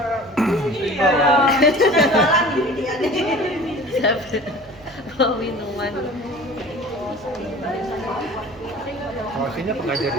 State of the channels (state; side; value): noise; right; hum, 24 dB below the sound